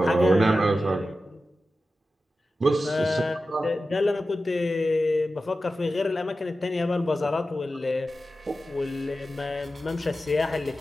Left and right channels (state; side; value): normal; both; correlation 0.93